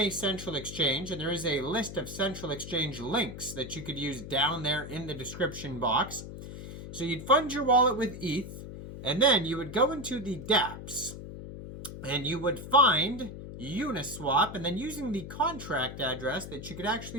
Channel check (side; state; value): left; noise; hum, 10 dB below the sound